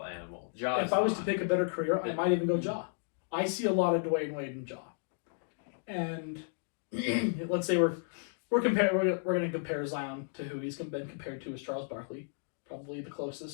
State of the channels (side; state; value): right; silent; digital silence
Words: animal. Ja If I was to pick a better career, I might even go Ja. I see a lot of Dwayne Wade in Ja. And let's say we're going to compare Zion to who he's been compared to as Charles Barkley, probably the